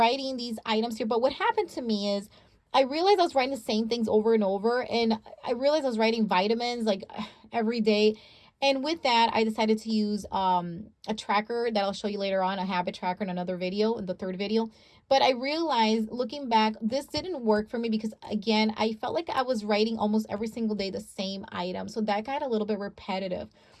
these items here. But what happened to me is I realized I was writing the same things over and over, and I realized I was writing vitamins like every day. And with that, I decided to use a tracker that I'll show you later on, a habit tracker in another video, in the third video. But I realized looking back, this didn't work for me because, again, I felt like I was writing almost every single day the same item. So that got a little bit repetitive.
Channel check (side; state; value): both; identical; correlation 1.00